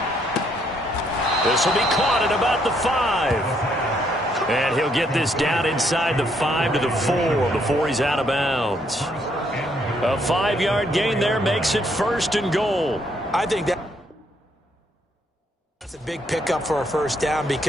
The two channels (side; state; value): both; normal; correlation 0.71